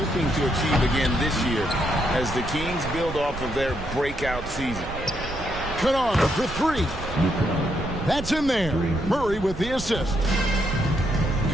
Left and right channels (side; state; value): right; noise; rumble, 10 dB below the sound